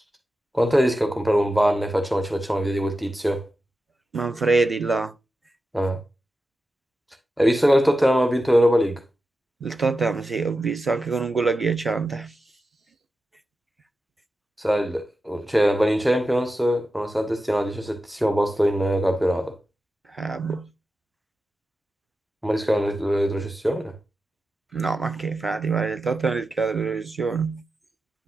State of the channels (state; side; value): normal; both; correlation 0.91